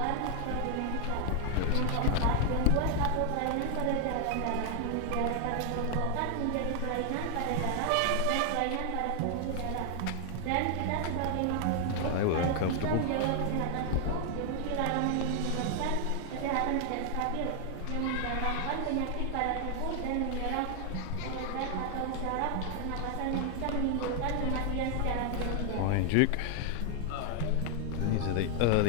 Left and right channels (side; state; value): both; different; correlation 0.00